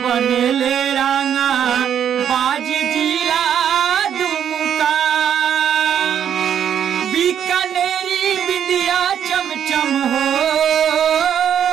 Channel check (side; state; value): left; quieter; 9.0 dB